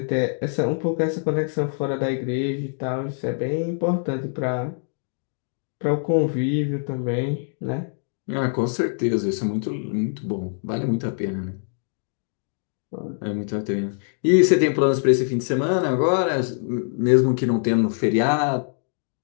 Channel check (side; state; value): right; silent; digital silence